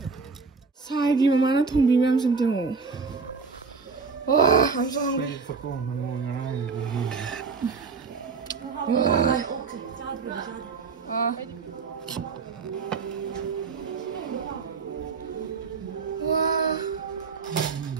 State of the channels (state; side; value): quieter; left; 4.9 dB